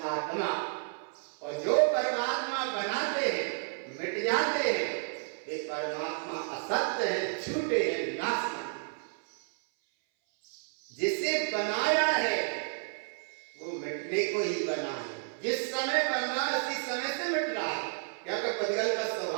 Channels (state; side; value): silent; left; 57 dB below the other